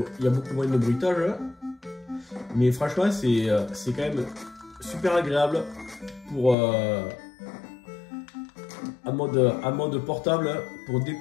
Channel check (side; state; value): right; drops out; at 6.6 s